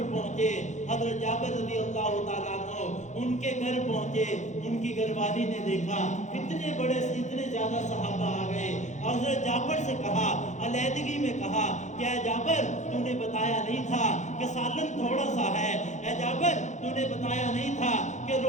پہنچے، حضرت جابر رضی اللہ تعالیٰ عنہ ان کے گھر پہنچے، ان کی گھر والی نے دیکھا اتنے زیادہ صحابہ آ گئے۔ حضرت جابر سے کہا، علیحدگی میں کہا، کیا جابر تو نے بتایا نہیں تھا کہ سالن تھوڑا سا ہے؟ اے جابر تو نے بتایا نہیں تھا کہ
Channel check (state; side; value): late; right; 0.35 ms